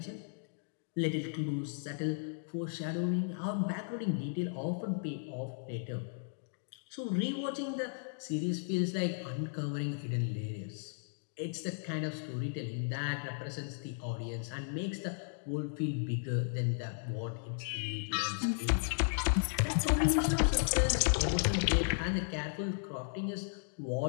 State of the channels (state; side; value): silent; right; digital silence